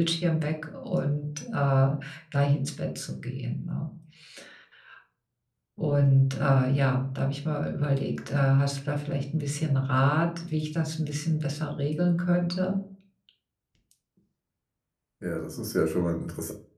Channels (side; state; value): both; identical; correlation 1.00